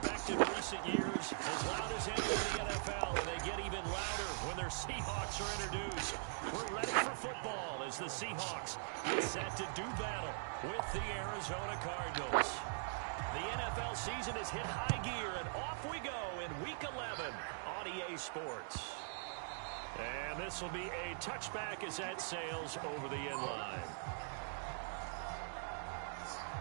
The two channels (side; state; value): left; silent; digital silence